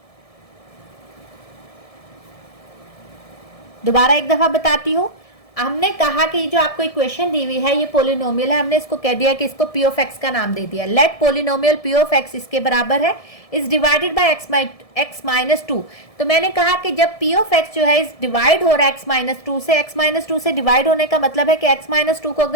दोबारा एक दफा बताती हूं, हमने कहा कि जो आपको इक्वेशन दी हुई है ये पोलिनोमियल है, हमने इसको कह दिया कि इसको p ऑफ x का नाम दे दिया। Let polynomial p of x इसके बराबर है is divided by x minus 2। तो मैंने कहा कि जब p ऑफ x जो है इस डिवाइड हो रहा है x माइनस 2 से, x माइनस 2 से डिवाइड होने का मतलब है कि x माइनस 2 को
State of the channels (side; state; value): right; late; 1.7 ms